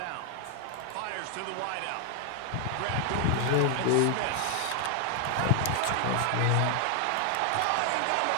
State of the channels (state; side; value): different; both; correlation 0.00